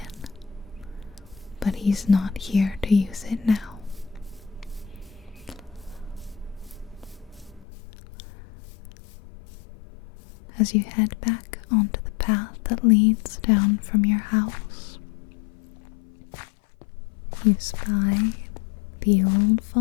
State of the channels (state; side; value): drops out; right; at 7.7 s